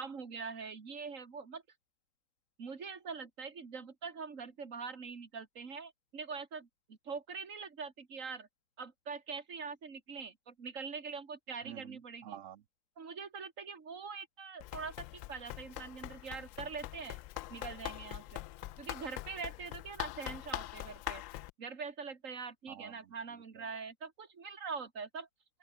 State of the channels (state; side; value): late; left; 3.8 ms